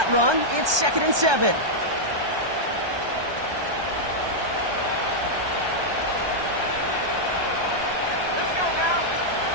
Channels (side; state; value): left; late; 1.2 ms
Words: run. It's 2nd and 7. Let's go now.